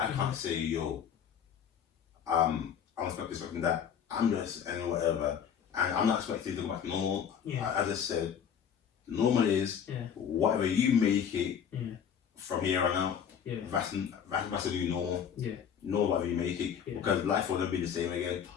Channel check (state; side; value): quieter; right; 8.0 dB